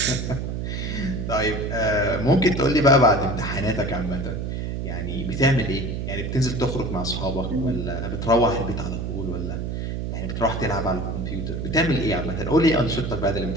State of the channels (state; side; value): noise; right; hum, 3 dB below the sound